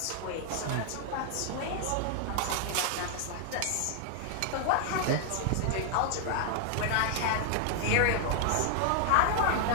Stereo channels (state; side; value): different; both; correlation -0.01